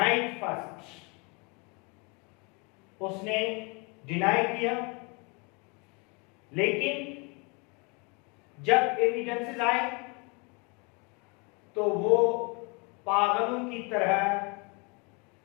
फर्स्ट, उसने डिनाई किया, लेकिन जब एविडेंसेस आए तो वो पागलों की तरह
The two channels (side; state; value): right; quieter; 30.6 dB